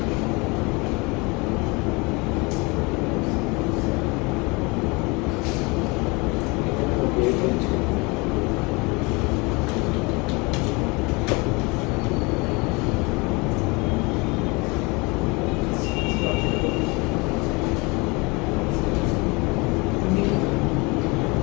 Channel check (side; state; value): right; quieter; 27.1 dB